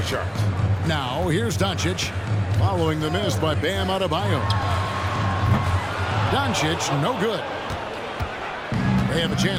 charts. Now, here's Doncic, following the miss by Bam Adebayo. Doncic, no good. They have a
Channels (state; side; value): identical; both; correlation 1.00